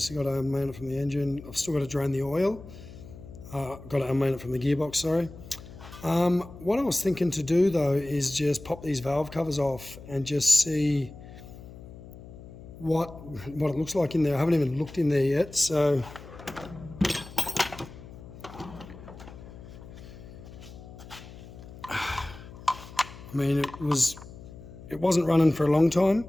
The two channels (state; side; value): noise; left; hum, 16 dB below the sound